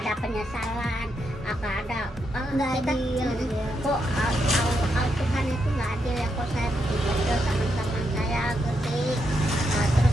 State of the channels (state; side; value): normal; both; correlation 0.82